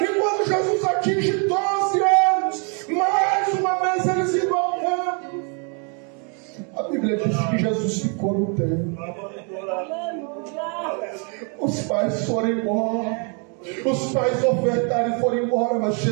quando Jesus atinge 12 anos, mais uma vez eles iam ao templo. A Bíblia diz que Jesus ficou no templo. Os pais foram embora, os pais ofertaram e foram embora, mas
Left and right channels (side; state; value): left; quieter; 37.4 dB